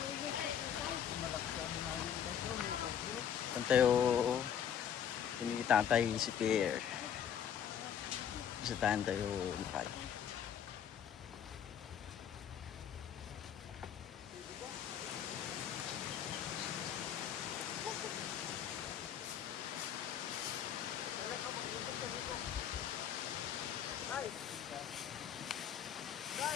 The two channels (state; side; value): quieter; right; 8.8 dB